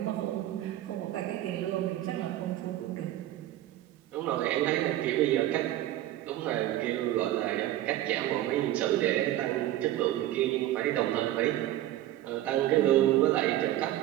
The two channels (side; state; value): left; quieter; 13.9 dB